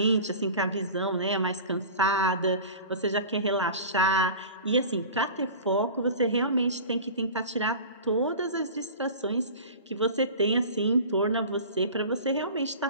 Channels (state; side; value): inverted; both; correlation -0.37